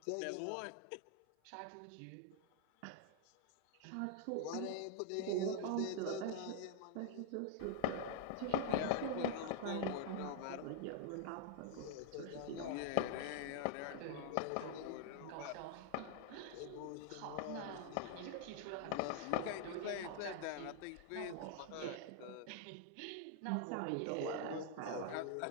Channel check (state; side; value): different; both; correlation 0.00